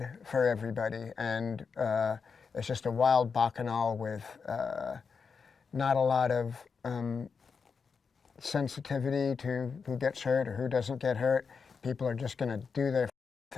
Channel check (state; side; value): quieter; right; 5.6 dB